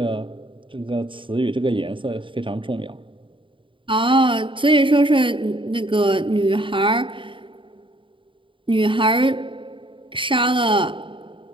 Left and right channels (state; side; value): late; left; 0.25 ms